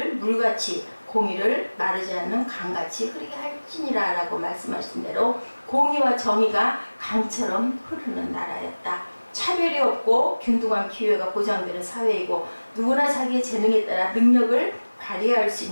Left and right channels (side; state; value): both; inverted; correlation -1.00